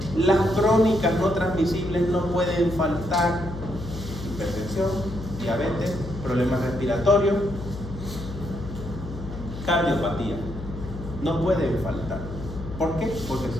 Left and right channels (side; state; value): left; noise; hum, 10 dB below the sound